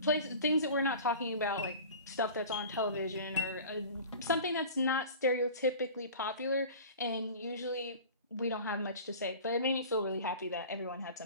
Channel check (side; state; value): both; inverted; correlation -0.39